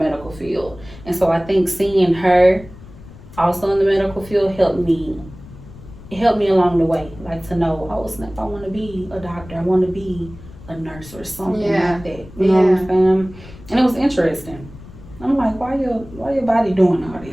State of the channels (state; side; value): noise; left; rumble, 18 dB below the sound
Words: field, and so I think seeing her also in the medical field helped me along the way, like to know, oh snap, I want to be a doctor, I want to be a nurse or something like that. You know what I'm saying? And it was interesting. I'm like, why your body doing all